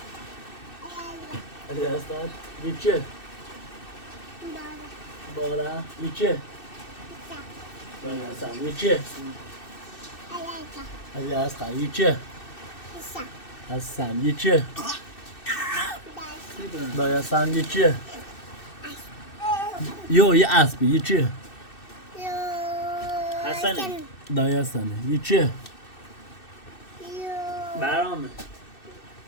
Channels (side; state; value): right; late; 2.6 ms